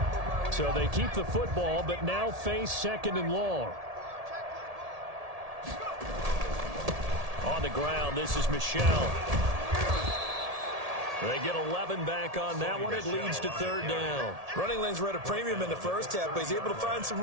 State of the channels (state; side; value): late; left; 1.7 ms